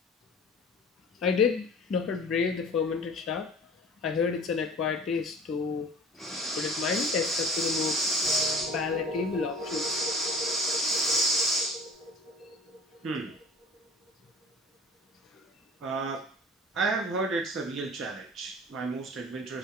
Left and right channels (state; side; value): normal; both; correlation 0.44